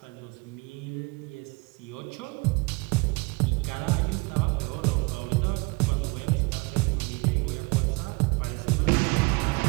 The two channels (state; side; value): quieter; left; 27.1 dB